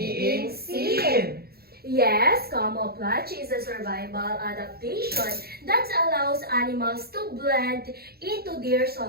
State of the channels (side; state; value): left; late; 0.45 ms